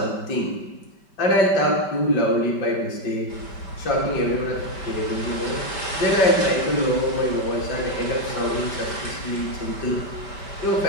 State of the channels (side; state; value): right; late; 5.2 ms